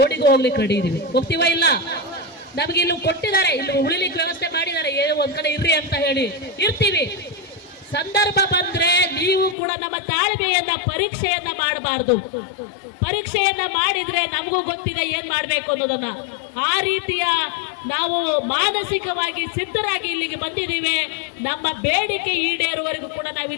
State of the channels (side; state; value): right; drops out; at 9.6 s